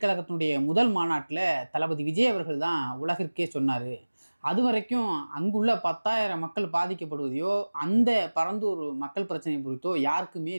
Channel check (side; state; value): both; inverted; correlation -1.00